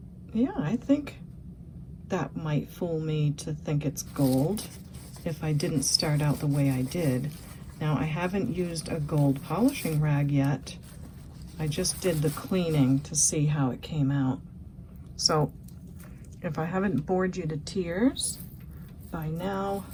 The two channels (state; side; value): identical; both; correlation 1.00